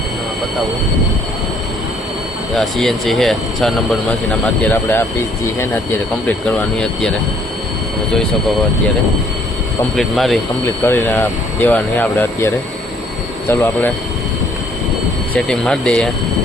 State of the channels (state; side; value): normal; both; correlation 0.63